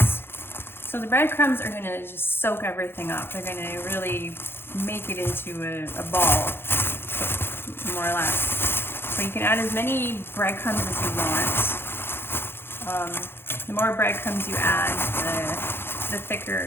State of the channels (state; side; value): late; right; 0.11 ms